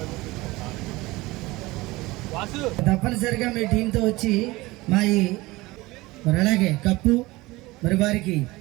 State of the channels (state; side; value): quieter; left; 20.8 dB